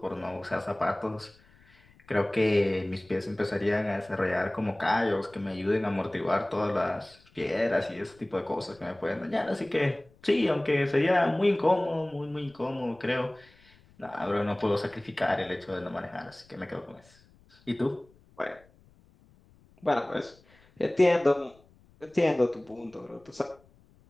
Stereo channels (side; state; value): left; noise; rumble, 29 dB below the sound